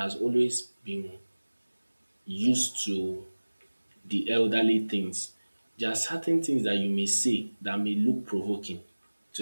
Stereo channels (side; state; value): both; inverted; correlation -1.00